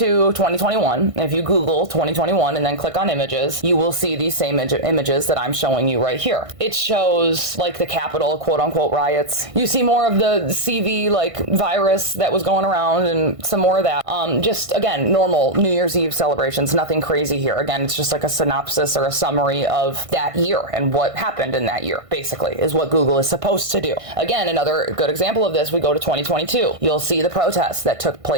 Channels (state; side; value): late; left; 1.5 ms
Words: 2021. If you Google 2021 and then click on images, you will see these same images that I'm showing you right here. It shows like the Capitol quote unquote riots. You see more of the CV like virus that was going around and some more of that. Just again, normal New Year's Eve celebrations, nothing crazy here. Again, it's just like a synopsis or a summary of that year and what happened in that year, basically, is what Google is supposed to do. Again, another good example of this, we go to 2022. You'll see the protests that took